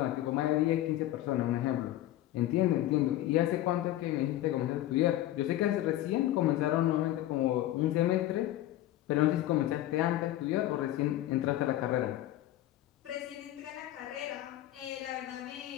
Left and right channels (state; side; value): quieter; right; 14.3 dB